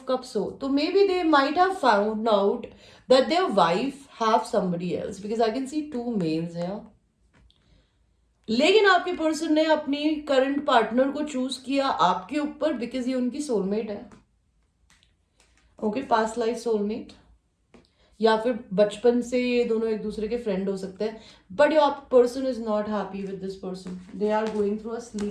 कप्स हो, तो maybe they might have found out that their wife have somebody else, because I can see 2 males here. लेकिन आपके पर्सन ने अपनी करंट पार्टनर को चूज किया आपके ऊपर बिकॉज ये उनकी सोलमेट है, ओके, पास्ट लाइफ सोलमेट, या फिर बचपन से ये दोनों एक दूसरे के फ्रेंड हो सकते हैं। But your person is not happy with this person, they are going through a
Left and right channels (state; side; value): identical; both; correlation 1.00